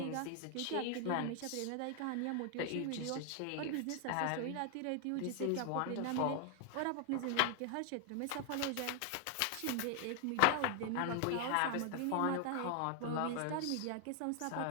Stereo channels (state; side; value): different; both; correlation 0.00